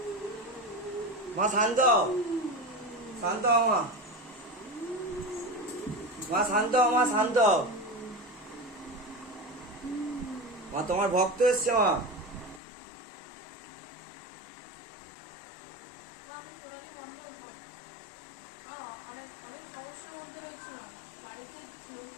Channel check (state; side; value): drops out; right; at 12.6 s